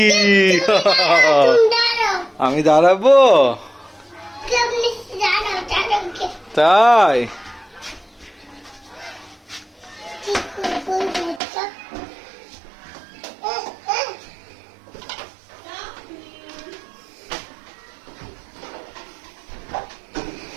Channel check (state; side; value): drops out; left; at 11.4 s